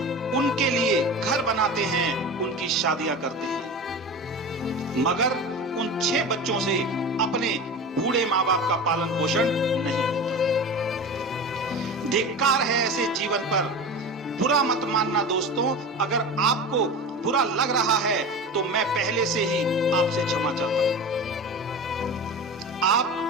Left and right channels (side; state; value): both; normal; correlation 0.30